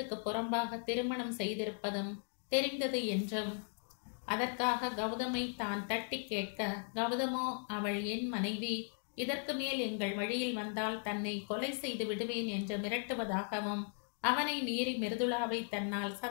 புறம்பாக திருமணம் செய்திருப்பதும் தெரிந்தது என்றும், அதற்காக கௌதமை தான் தட்டி கேட்க, கௌதமோ அவள் என் மனைவி, இதற்கு மேல் எங்கள் வழியில் வந்தால் தன்னை கொலை செய்து விடுவேன் என்று மிரட்டுவதாகவும், அவனை மீறி மிருதுளாவை தன்னால்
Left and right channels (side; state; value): right; silent; 53 dB below the other